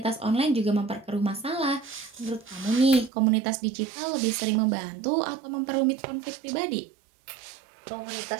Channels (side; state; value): left; drops out; at 3.1 s